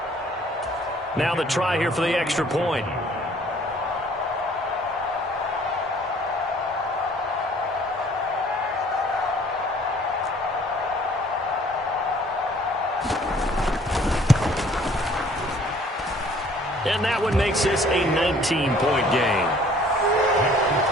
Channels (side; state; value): both; normal; correlation 0.56